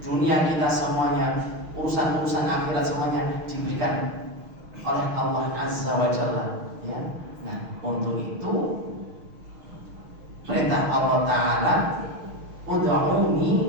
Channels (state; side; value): late; left; 6.3 ms